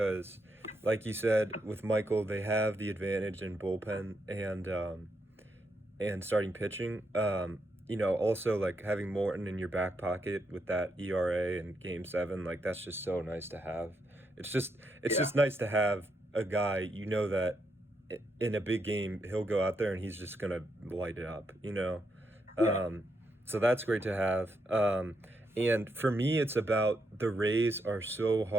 like you said, with Michael, they have the advantage in bullpen and starting pitching. Also like having Morton in your back pocket with that ERA in Game 7, like that's just so nice to have. It's Yeah, just nice to have a guy that in a big game he'll go out there and he's just gonna light it up. yeah, Um, so that's great to have. And for me, it's about the Rays are so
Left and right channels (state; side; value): normal; both; correlation 0.80